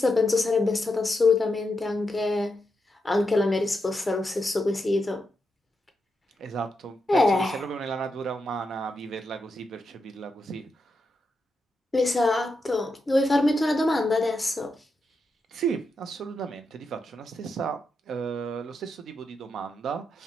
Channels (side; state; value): both; normal; correlation 0.85